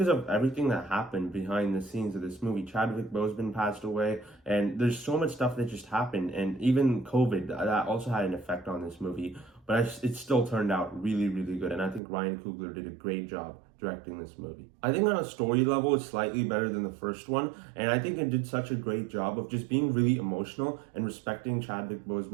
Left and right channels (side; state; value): left; drops out; at 12.0 s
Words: of everything that happened behind the scenes of this movie. Chadwick Boseman passed away, and there's so much stuff that just happened, and even COVID, that also had an effect on this movie, but it still turned out really, really good, and I think Ryan Coogler did a great job directing this movie. I think on a story level, it's slightly better than the first one, and I think it did such a great job of just being really emotional and respecting Chadwick